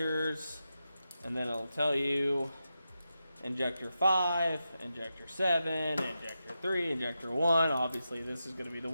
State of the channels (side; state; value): both; inverted; correlation -0.89